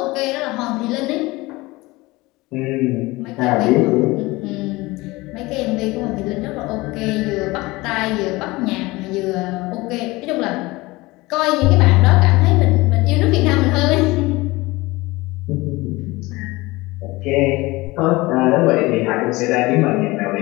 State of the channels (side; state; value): right; quieter; 21.5 dB